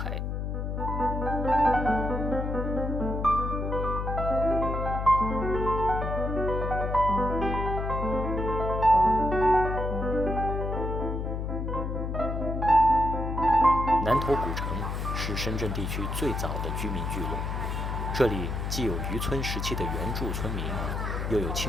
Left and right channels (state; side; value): noise; left; hum, 2 dB below the sound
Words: 南头古城是深圳地区最早的居民聚落，这里既有渔村时期的原住村民，又有